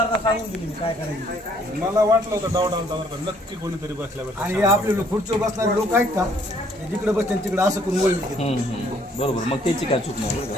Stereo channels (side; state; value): both; normal; correlation 0.64